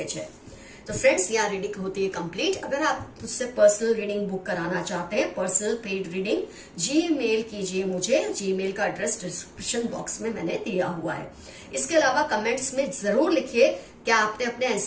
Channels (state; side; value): identical; both; correlation 1.00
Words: है। तो फ्रेंड्स, यहाँ रीडिंग होती है कंप्लीट। अगर आप मुझसे पर्सनल रीडिंग बुक कराना चाहते हैं, पर्सनल पेड रीडिंग, जीमेल कीजिए मुझे। जीमेल का एड्रेस डिस्क्रिप्शन बॉक्स में मैंने दिया हुआ है। इसके अलावा कमेंट्स में जरूर लिखिए क्या आपने अपने